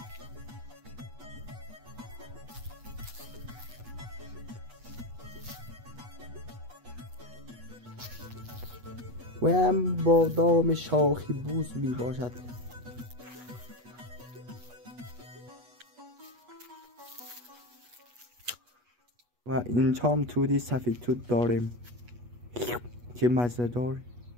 و هم بادام شاخی بوز می باشد. و اینجا هم تودی سفید توت داریم. چه مزه دار.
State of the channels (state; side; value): late; left; 8.3 ms